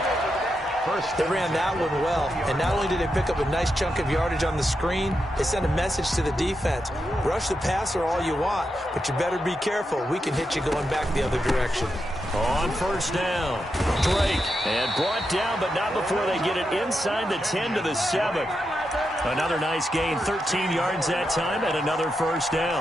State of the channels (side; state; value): both; normal; correlation 0.86